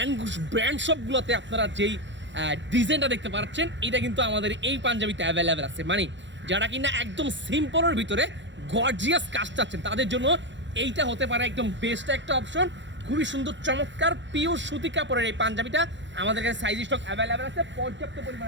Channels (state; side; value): late; left; 0.53 ms